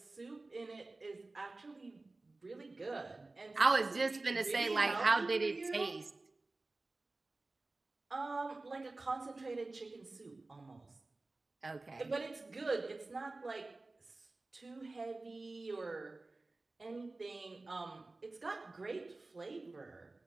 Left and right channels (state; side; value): quieter; left; 3.2 dB